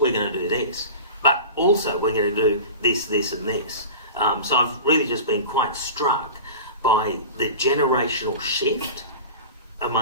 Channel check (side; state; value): both; inverted; correlation -0.34